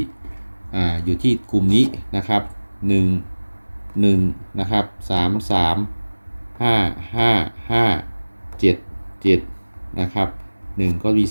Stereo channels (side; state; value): both; inverted; correlation -1.00